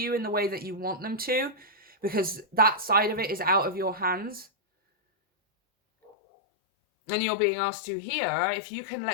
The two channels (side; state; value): right; drops out; at 6.1 s